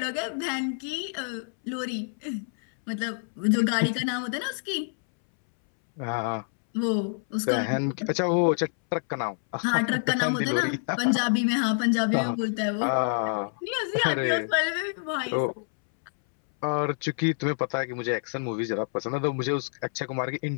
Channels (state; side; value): silent; right; 60 dB below the other